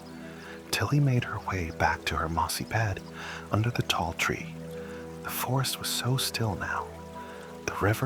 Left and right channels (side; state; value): both; identical; correlation 1.00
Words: Tilly made her way back to her mossy bed under the tall tree. The forest was so still now. The